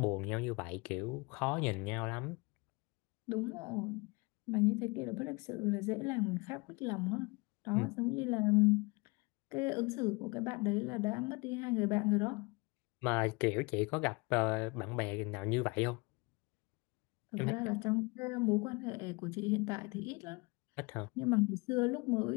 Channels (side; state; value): right; quieter; 27.0 dB